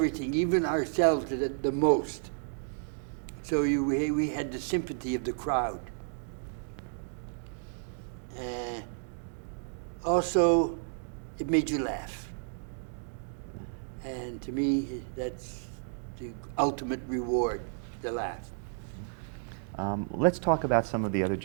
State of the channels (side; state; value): left; silent; digital silence